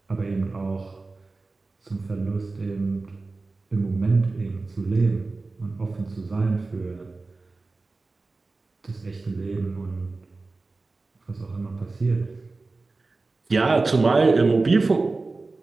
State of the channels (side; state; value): left; quieter; 3.6 dB